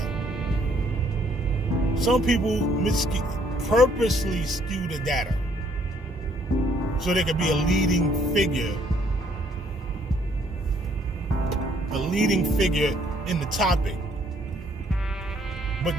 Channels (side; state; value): both; normal; correlation 0.65